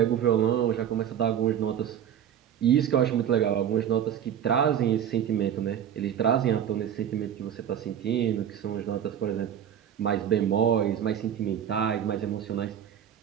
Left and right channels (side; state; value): left; quieter; 9.5 dB